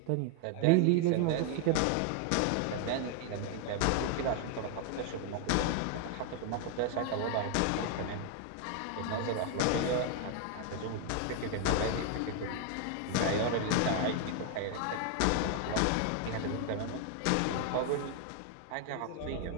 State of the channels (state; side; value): different; both; correlation 0.00